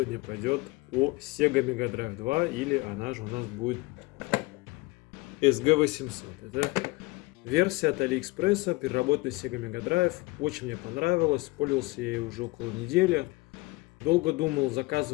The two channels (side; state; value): right; quieter; 22.7 dB